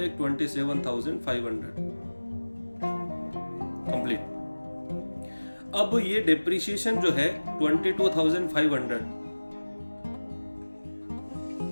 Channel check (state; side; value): inverted; both; correlation -1.00